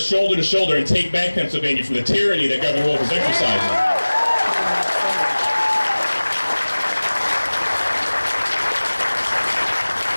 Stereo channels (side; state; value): both; inverted; correlation -1.00